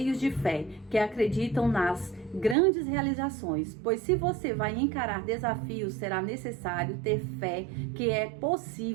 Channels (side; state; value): left; drops out; at 2.6 s